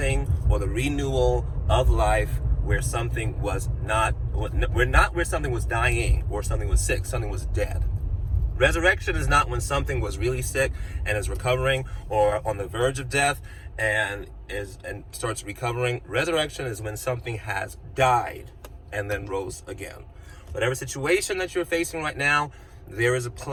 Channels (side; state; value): both; identical; correlation 1.00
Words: or the renewal of life where something was not, where something was dying or something was sick, something was dead. Resurrection is not when something was really sick and is recovering, or on the verge of death and starts recovering. Resurrection is when something has died and then rose again. Whatever situation that you're facing right now, there is a